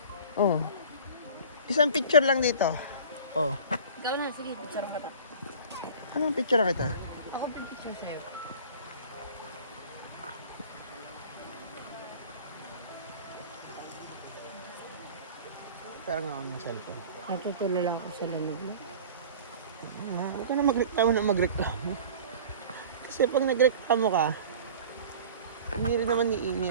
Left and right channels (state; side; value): inverted; both; correlation -0.40